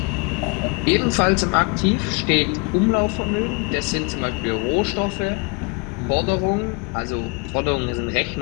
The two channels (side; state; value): right; quieter; 31.8 dB